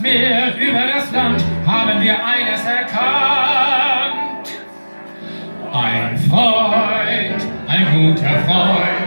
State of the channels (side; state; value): both; inverted; correlation -1.00